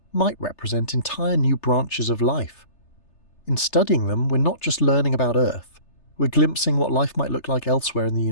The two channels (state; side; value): late; right; 3.3 ms